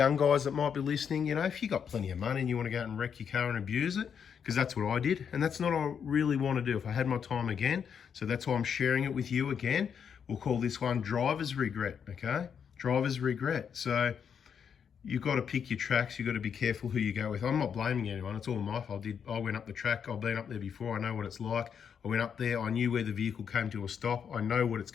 guys that might be listening, you know, if you got plenty of money and you want to go out and wreck your car and abuse it, because that's what I did, and that's not what I really want to do if I had my time again. So that's why I'm sharing it with you again. We'll call this one driver's regret, okay? Driver's regret. So you've got to pick your tracks. You've got to be careful who you go with. I'm not blaming anyone. It's all my fault. I went up the track. I've been up there before. I know what it's like. I went up there. I knew where the vehicle came to a stop. I know what it's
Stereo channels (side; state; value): right; quieter; 7.4 dB